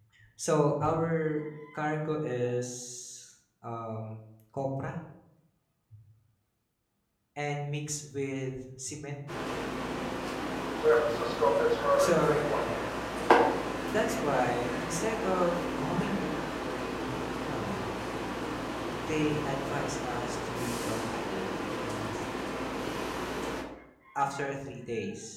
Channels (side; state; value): both; identical; correlation 1.00